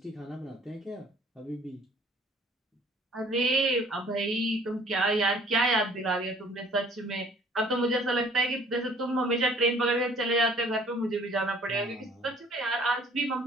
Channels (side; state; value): both; normal; correlation 0.55